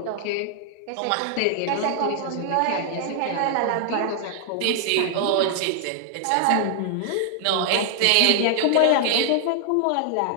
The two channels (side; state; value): both; different; correlation -0.01